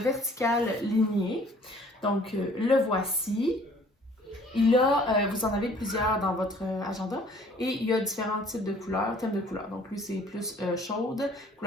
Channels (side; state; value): both; normal; correlation 0.55